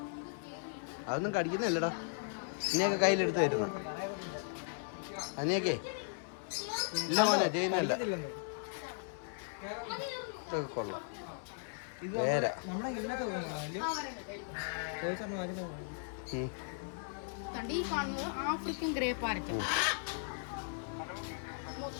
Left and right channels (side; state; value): right; silent; 53 dB below the other